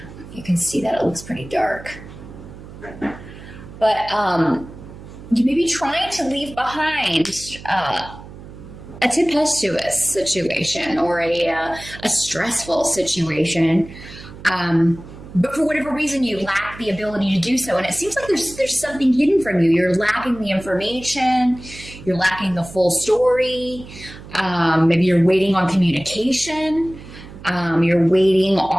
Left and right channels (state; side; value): noise; right; hum, 16 dB below the sound